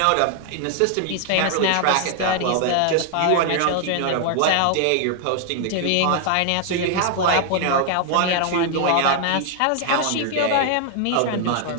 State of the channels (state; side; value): different; both; correlation 0.00